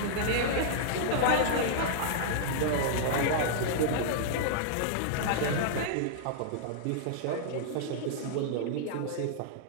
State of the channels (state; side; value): different; both; correlation -0.01